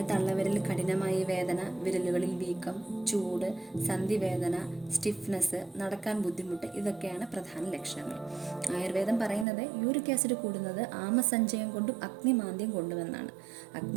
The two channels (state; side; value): drops out; left; at 9.5 s